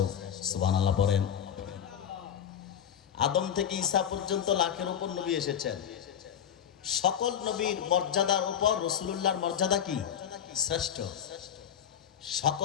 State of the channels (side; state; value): right; quieter; 9.0 dB